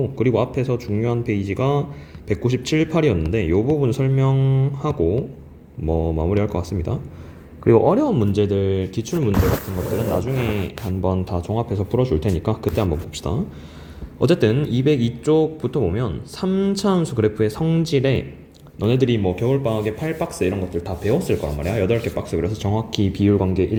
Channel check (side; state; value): both; identical; correlation 1.00